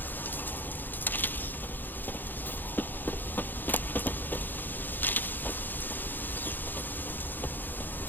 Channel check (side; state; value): right; late; 0.089 ms